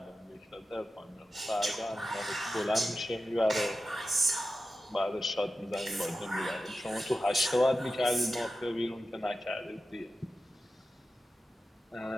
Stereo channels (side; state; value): both; normal; correlation 0.92